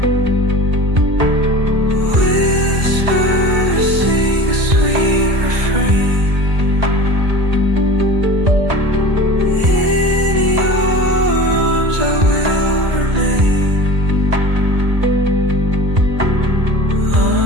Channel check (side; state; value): left; late; 2.0 ms